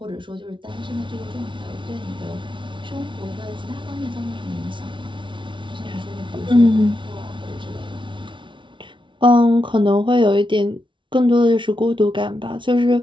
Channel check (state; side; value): late; left; 0.24 ms